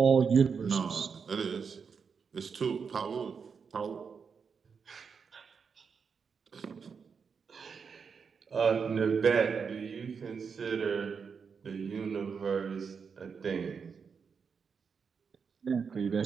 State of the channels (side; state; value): left; quieter; 5.9 dB